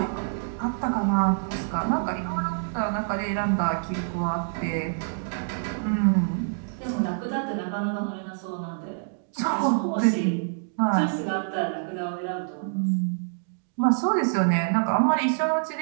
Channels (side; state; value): left; silent; digital silence